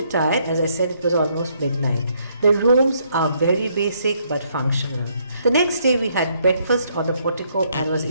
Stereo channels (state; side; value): inverted; both; correlation -0.71